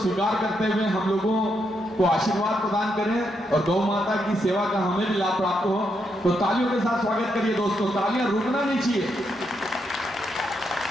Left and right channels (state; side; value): normal; both; correlation 0.80